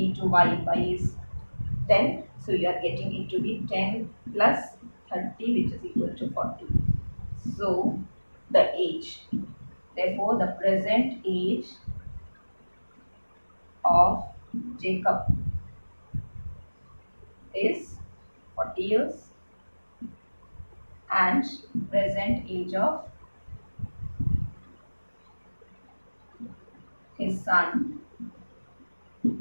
y. Y is 10. So you are getting it to be 10 plus 30, which is equal to 40. So the age, therefore the present age of Jacob is 40 years, and present age of his son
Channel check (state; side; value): inverted; both; correlation -1.00